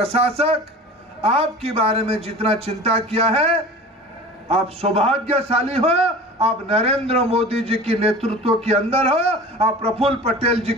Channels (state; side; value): normal; both; correlation 0.38